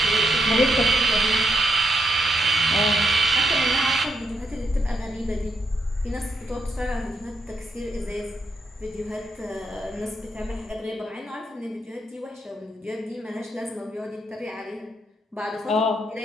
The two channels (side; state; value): both; normal; correlation 0.80